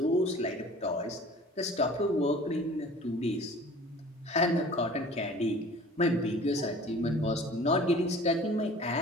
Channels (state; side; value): normal; both; correlation 0.45